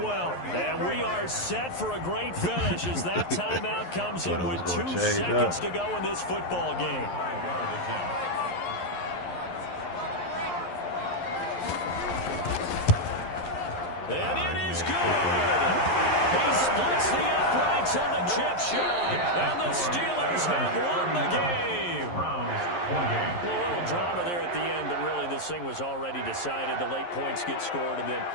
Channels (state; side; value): late; right; 11 ms